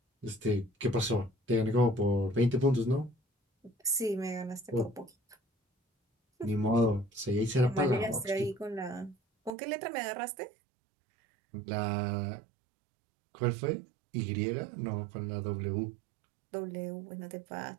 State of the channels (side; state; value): left; drops out; at 9.5 s